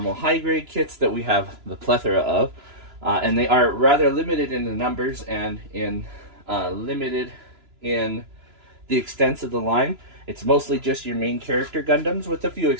high grade kits that we have the plethora of. And they are rather limited in the numbers and limited in the extents of the line. It's mostly just your main character Gundams with a few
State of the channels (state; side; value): late; left; 2.9 ms